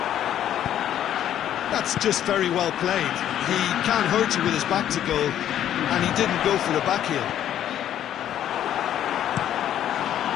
That's just very well played. He can't hurt you with his back to goal, and he didn't go for the back heel.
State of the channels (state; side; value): quieter; right; 10.9 dB